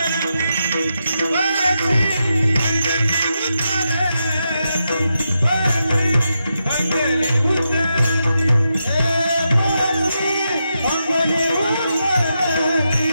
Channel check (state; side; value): inverted; both; correlation -0.86